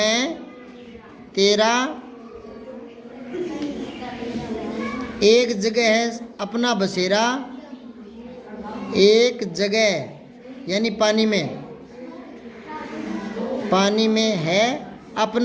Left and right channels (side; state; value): both; identical; correlation 1.00